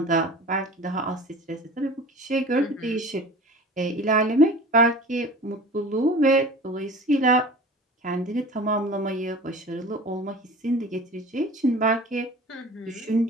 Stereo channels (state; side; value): normal; both; correlation 0.40